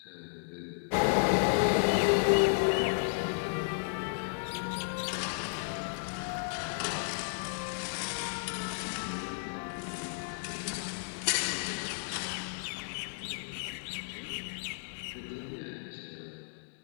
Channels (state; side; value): silent; right; digital silence